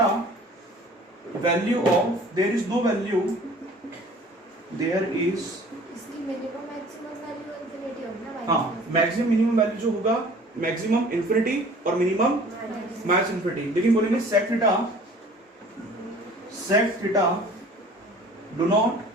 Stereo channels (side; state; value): both; normal; correlation 0.49